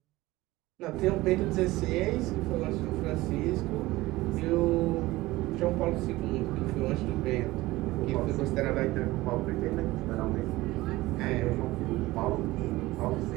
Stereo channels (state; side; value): quieter; left; 18.8 dB